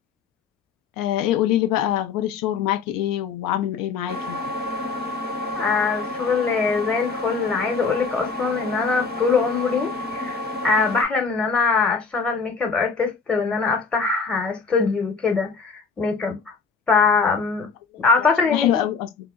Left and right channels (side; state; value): right; quieter; 5.1 dB